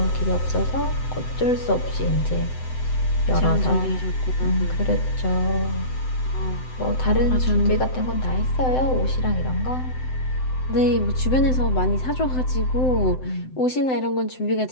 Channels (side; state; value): right; late; 7.8 ms